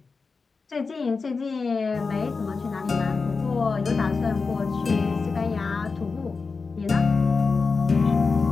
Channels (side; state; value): right; quieter; 4.5 dB